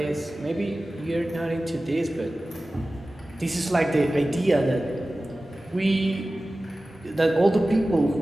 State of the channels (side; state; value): both; normal; correlation 0.96